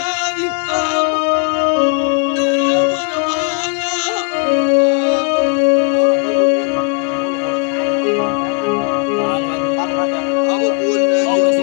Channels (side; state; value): right; quieter; 38.5 dB